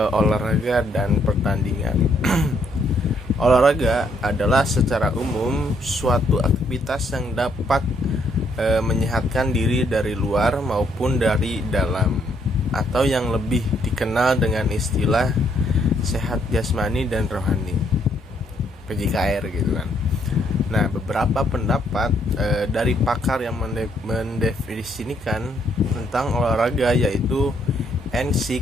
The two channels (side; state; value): both; normal; correlation 0.71